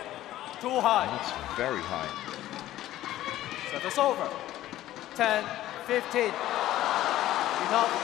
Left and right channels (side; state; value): right; quieter; 14.3 dB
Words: Too high. That's very high. Service over. 10-15.